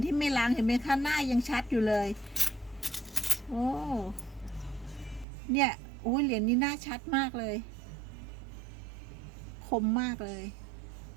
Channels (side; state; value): left; drops out; at 5.2 s